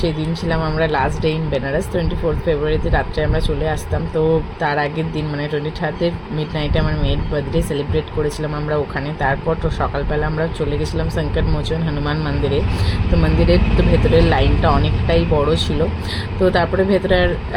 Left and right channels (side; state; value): both; identical; correlation 1.00